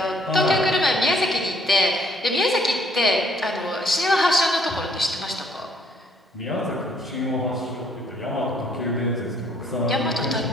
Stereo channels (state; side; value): normal; both; correlation 0.65